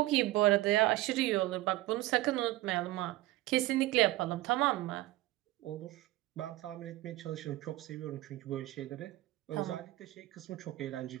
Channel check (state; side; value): quieter; left; 17.4 dB